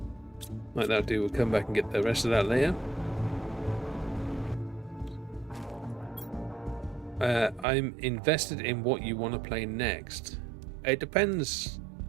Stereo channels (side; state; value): left; drops out; at 7.7 s